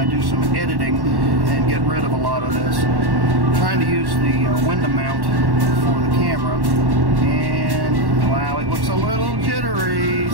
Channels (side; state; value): left; late; 1.1 ms